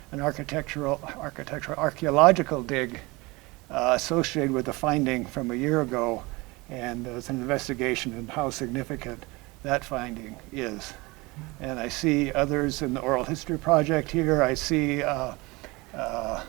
archeological dig associated with the finding from a year ago, and there was an investigation into how significant that finding is. And I see others in the oral history project here. I see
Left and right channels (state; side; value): quieter; left; 23.9 dB